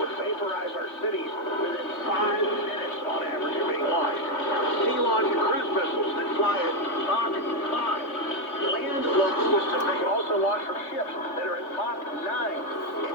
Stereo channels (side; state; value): right; late; 3.5 ms